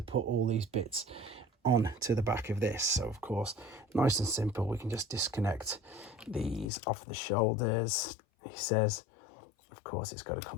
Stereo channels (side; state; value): right; drops out; at 6.7 s